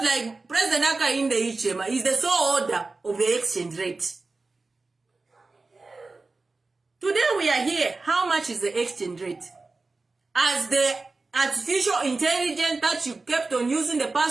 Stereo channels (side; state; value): left; quieter; 3.6 dB